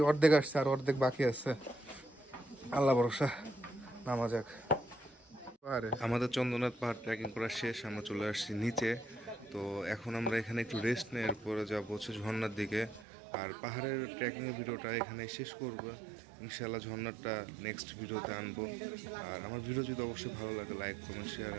অর্ধেক আসছে, আর অর্ধেক বাকি আছে। আল্লাহ ভরসা, নামা যাক। আমাদের চন্দ্রনাথ পাহাড় ট্রেকিং করা শেষ, আমরা চলে আসছি নিচে। তো এখন আমরা এখানে একটু রেস্ট নিয়ে এরপরে যাবো হচ্ছে ঝর্ণার দিকে। আর পাহাড়ের ট্রেকিংয়ের ভিডিওটা এখানে শেষ করবো ইনশাল্লাহ। ঝর্ণাটা নেক্সট ভিডিওতে আনবো। আর আমার ভিডিও যদি অবশ্যই ভালো লাগে, like comment share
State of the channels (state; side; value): drops out; left; at 13.1 s